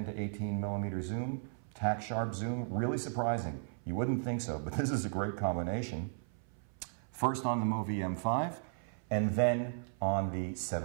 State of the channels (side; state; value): left; silent; 54 dB below the other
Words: to 18 millimeter zoom, tack sharp zoom, really surprising. You wouldn't think so, but this is a great combination. First on the MoVI M5, and then on the